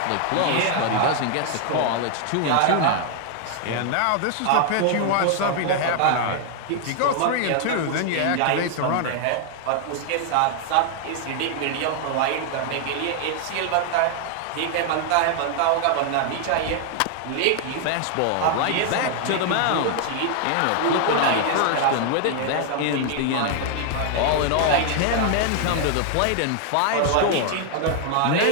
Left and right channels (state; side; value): different; both; correlation 0.00